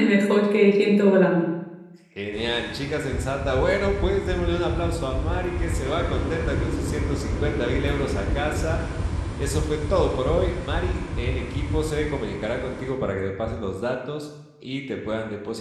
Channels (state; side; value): identical; both; correlation 1.00